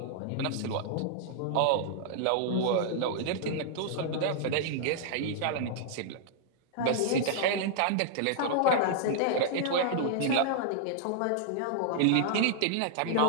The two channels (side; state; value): both; different; correlation -0.01